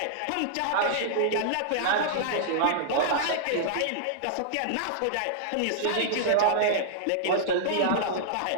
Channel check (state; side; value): different; both; correlation -0.02